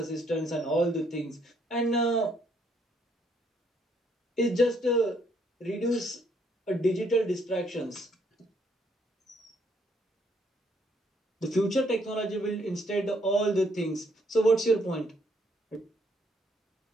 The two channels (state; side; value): normal; both; correlation 0.69